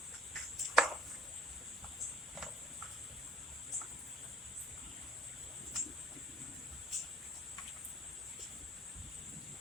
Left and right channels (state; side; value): normal; both; correlation 0.60